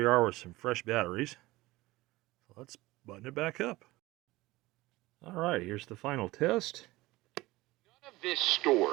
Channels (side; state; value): left; quieter; 19.6 dB